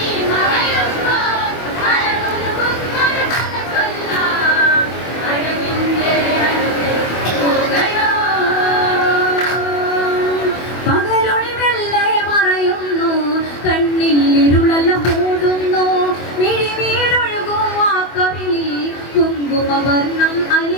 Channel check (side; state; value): right; late; 24 ms